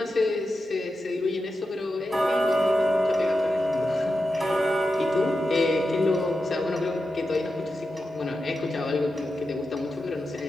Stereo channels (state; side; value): normal; both; correlation 0.90